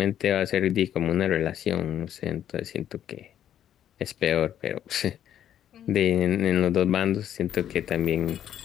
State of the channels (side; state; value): right; quieter; 10.4 dB